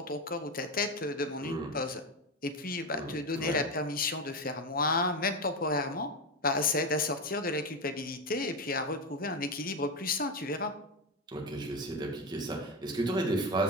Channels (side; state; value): both; normal; correlation 0.15